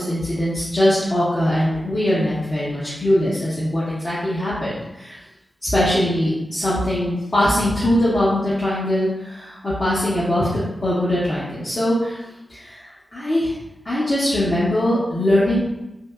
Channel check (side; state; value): both; normal; correlation 0.89